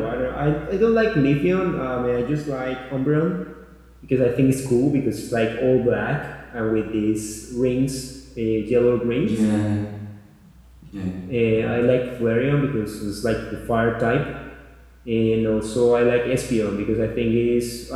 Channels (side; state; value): both; identical; correlation 1.00